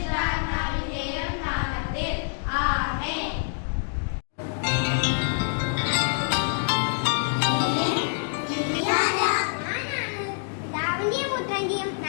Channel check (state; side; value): silent; right; digital silence